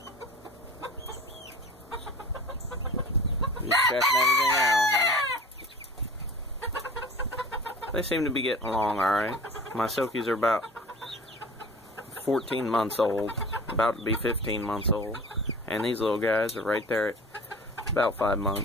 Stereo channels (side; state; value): both; normal; correlation 0.40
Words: You checking everything out, huh? They seem to be getting along alright. My silkies are about 14 months old, about to be 15 months old. And these little guys are right there at about 5